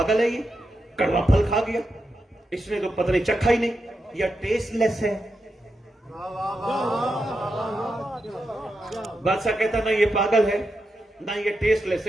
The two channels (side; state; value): both; normal; correlation 0.87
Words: ہے یہ، کڑوا پھل کھا گیا، اس نے تو پتہ نہیں چکھا ہی نہیں، یا ٹیسٹ لیس ہے. بادشاہ کہتا نہ یہ پاگل ہے نہ یہ ٹیسٹ لیس